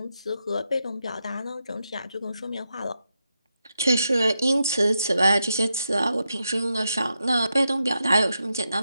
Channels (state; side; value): inverted; both; correlation -0.86